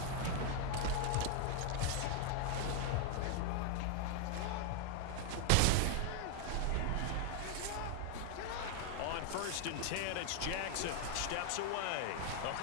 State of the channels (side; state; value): both; different; correlation 0.00